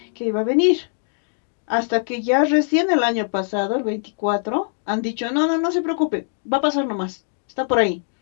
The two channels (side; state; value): right; silent; digital silence